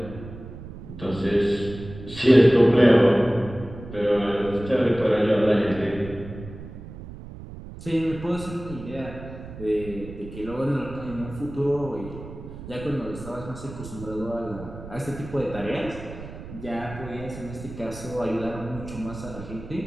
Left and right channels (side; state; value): right; noise; rumble, 13 dB below the sound